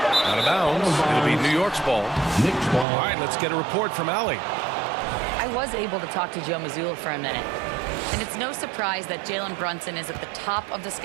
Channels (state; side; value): drops out; left; at 2.9 s